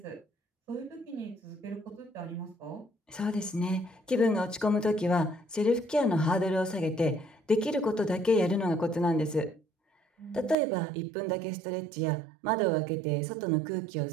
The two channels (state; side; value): drops out; left; at 10.6 s